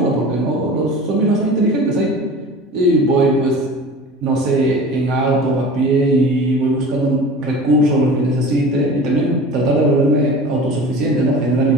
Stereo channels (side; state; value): both; normal; correlation 0.38